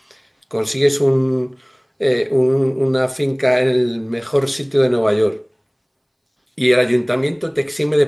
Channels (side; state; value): both; identical; correlation 1.00